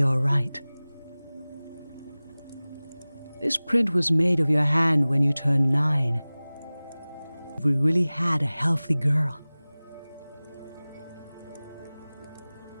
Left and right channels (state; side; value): inverted; both; correlation -0.99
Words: all right. This print was made of your hand when you turned 9. We really had a healthy girl.